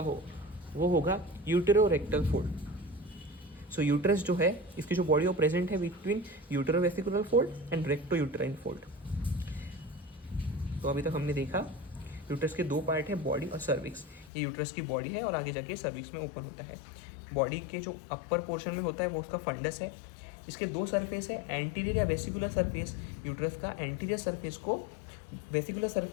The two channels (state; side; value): drops out; right; at 14.3 s